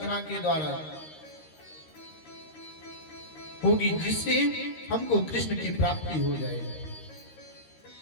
के द्वारा होगी जिससे हमको कृष्ण की प्राप्ति हो जाए।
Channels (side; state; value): right; late; 13 ms